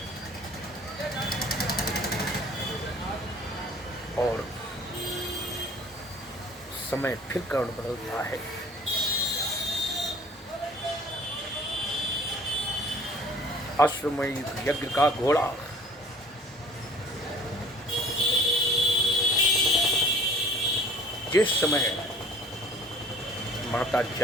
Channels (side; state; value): both; normal; correlation 0.51